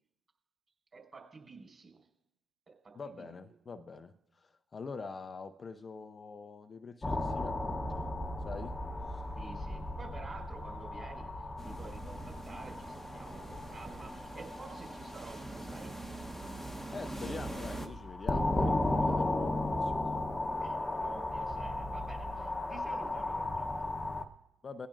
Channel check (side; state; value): both; normal; correlation 0.92